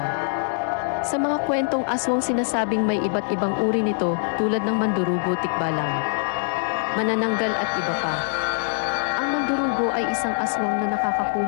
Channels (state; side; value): silent; right; digital silence